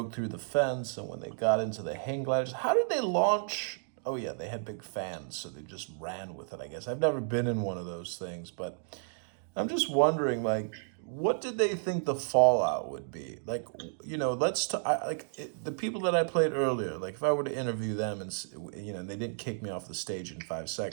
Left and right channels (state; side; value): silent; left; digital silence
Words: through the fence and when they got into the hang gliders? How did they launch? Oh, yeah, they had big fans, so they just ran with it, I guess. I've never been in one of those things, but I'm just wondering, what did they think the fallout would be? The people that I played earlier, if I were to interview them and, they didn't kick me off the stage in 5